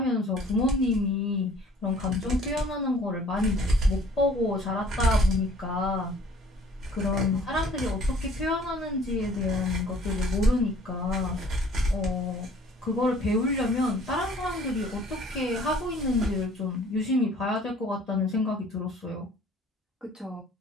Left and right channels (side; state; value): both; normal; correlation 0.54